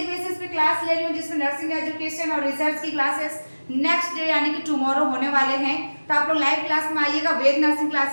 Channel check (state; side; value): inverted; both; correlation -1.00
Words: बेसिस पे क्लास ले रही हूँ जिसमें नर्सिंग एजुकेशन और रिसर्च की क्लासेस नेक्स्ट डे यानी कि टुमारो होने वाले हैं। तो आप लोग लाइव क्लास में आइएगा वेद नर्सिंग